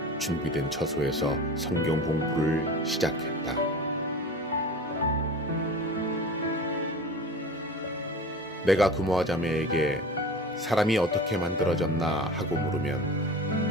준비된 처소에서 성경 공부를 시작했다. 내가 금화 자매에게 사람이 어떻게 만들어졌나 하고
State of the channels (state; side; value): normal; both; correlation 0.36